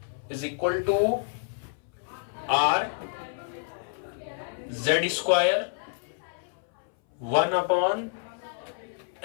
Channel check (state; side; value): silent; right; 58 dB below the other